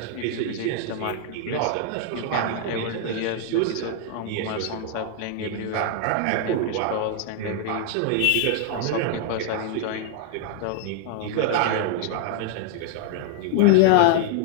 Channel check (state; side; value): different; both; correlation 0.00